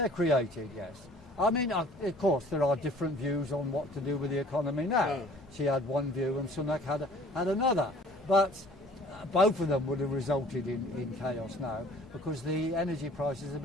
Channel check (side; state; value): both; normal; correlation 0.52